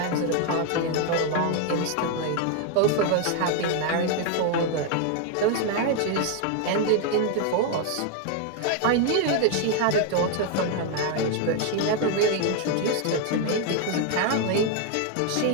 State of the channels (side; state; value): both; different; correlation 0.01